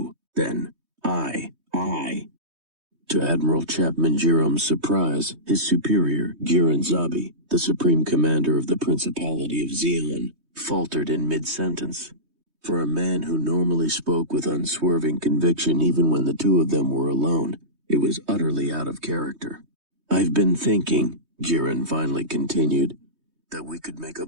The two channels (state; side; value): late; left; 3.2 ms